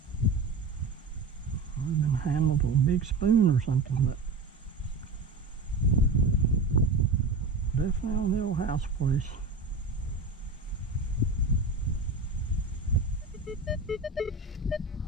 Would have been handled with a big spoon or something, but definitely on the old house place.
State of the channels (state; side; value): quieter; left; 3.5 dB